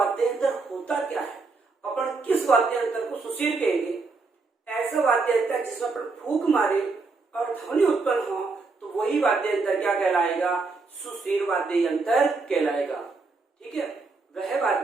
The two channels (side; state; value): left; quieter; 4.1 dB